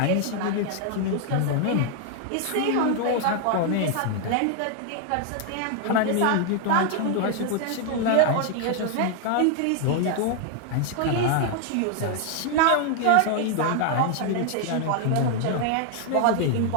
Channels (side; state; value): both; different; correlation 0.00